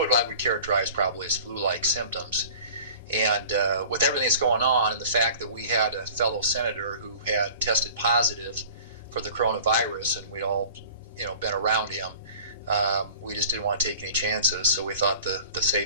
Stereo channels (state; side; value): inverted; both; correlation -0.43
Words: I would characterize probably as flu-like symptoms. And with everything that's going on and the fact that we had a fellow senator who had tested positive for the coronavirus, and we'd all, been around him, we just didn't want to take any chances. So we thought the